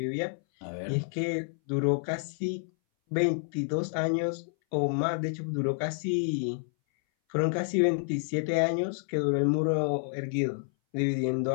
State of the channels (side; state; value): right; silent; 58 dB below the other